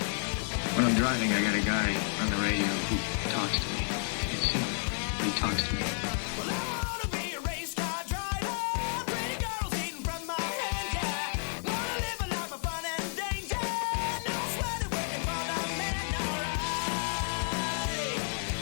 When I'm driving, I got a guy on the radio who talks to me. You see him, but he talks to me. Well, I wanna be a race car driver. Pretty girls eating from my hand, yeah. Wanna live a life of fun and danger. No sweating working for the man, alright.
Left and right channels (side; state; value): right; silent; 57 dB below the other